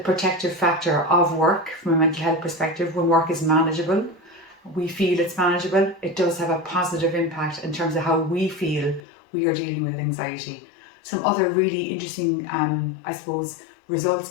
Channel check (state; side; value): drops out; right; at 9.0 s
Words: factor of work from a mental health perspective. When work is manageable, we feel it's manageable, it does have a positive impact in terms of how we feel we are dealing with anxiety. Some other really interesting, results